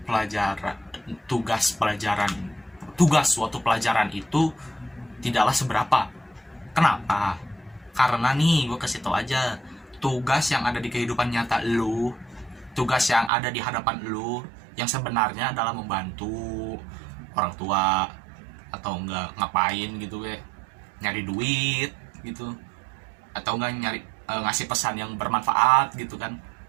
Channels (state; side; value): drops out; left; at 13.3 s